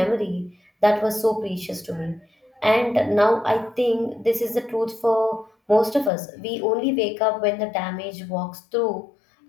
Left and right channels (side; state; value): right; drops out; at 6.1 s